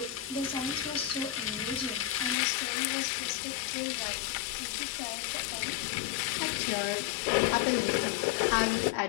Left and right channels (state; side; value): drops out; right; at 2.4 s